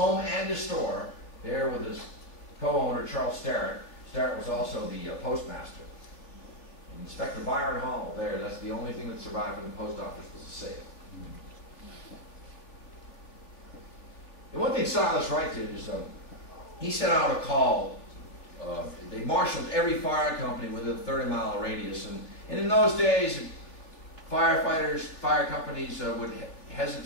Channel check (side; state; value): right; late; 3.3 ms